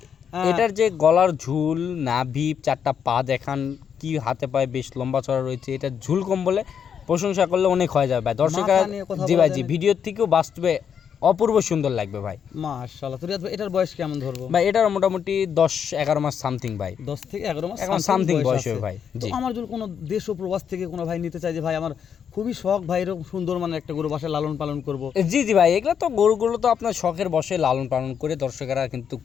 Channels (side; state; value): right; quieter; 7.7 dB